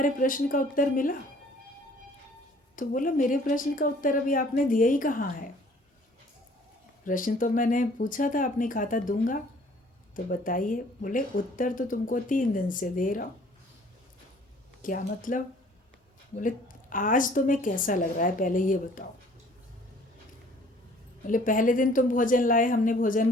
प्रश्न का उत्तर मिला? तो बोला मेरे प्रश्न का उत्तर अभी आपने दिया ही कहाँ है, प्रश्न तो मैंने पूछा था, आपने कहा था दूंगा, तो बताइए। बोले उत्तर तो तुमको 3 दिन से दे रहा हूँ। क्या मतलब? बोले आज तुम्हें कैसा लग रहा है पहले ये बताओ। बोले पहले दिन तुम भोजन लाए, हमने भोजन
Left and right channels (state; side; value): normal; both; correlation 0.55